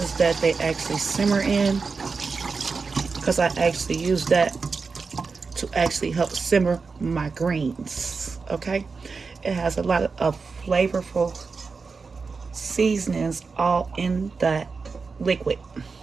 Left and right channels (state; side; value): quieter; left; 4.7 dB